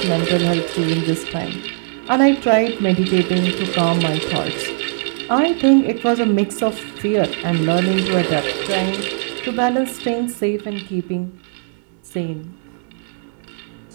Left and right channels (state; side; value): silent; left; 58 dB below the other